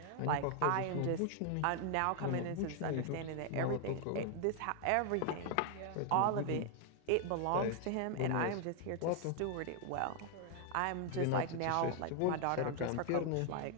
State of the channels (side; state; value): both; different; correlation 0.00